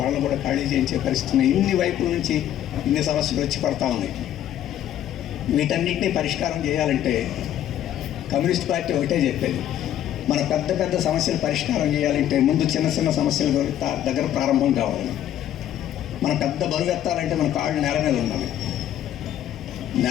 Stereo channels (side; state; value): right; quieter; 11.4 dB